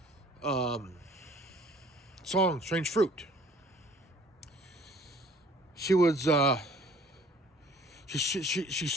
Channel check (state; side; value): normal; both; correlation 0.54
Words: song Strange Fruit. She was she